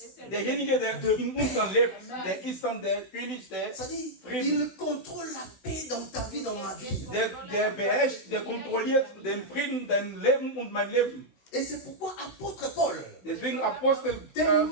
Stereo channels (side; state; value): right; late; 16 ms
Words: Derjenige, der in uns dann lebt, der ist dann der König, der C'est-à-dire, Frieden. il contrôle la paix dans ta vie, dans ma vie. Der beherrscht, der kontrolliert den Frieden, dein Leben und mein Leben. Et c'est pourquoi apôtre Paul, Deswegen Apostel